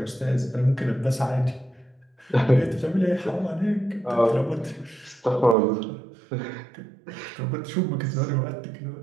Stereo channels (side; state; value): left; drops out; at 5.6 s